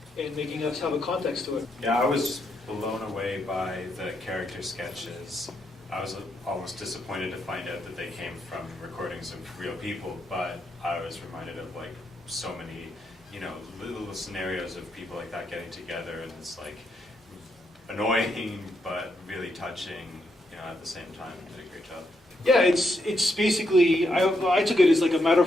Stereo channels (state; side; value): normal; both; correlation 0.80